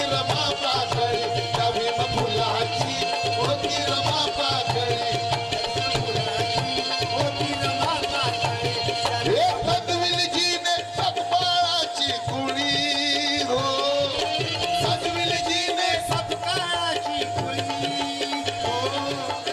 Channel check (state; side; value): identical; both; correlation 1.00